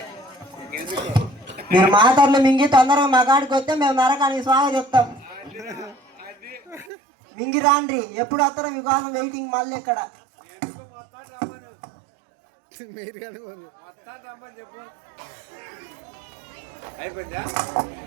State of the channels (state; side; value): drops out; left; at 6.9 s